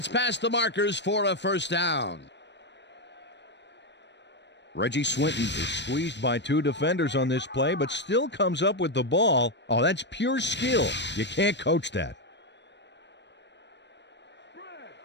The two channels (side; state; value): right; late; 0.51 ms